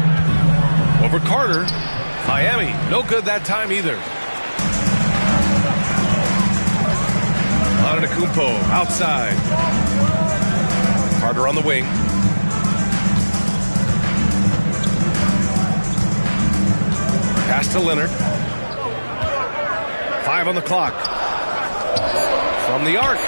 Over Carter. Miami, no good that time either. Antetokounmpo outside. Carter on the wing. Pass to Leonard. 5 on the clock. From the arc.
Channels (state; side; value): inverted; both; correlation -1.00